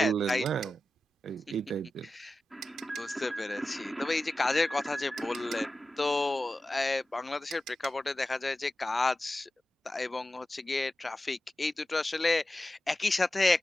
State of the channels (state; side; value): normal; both; correlation 0.93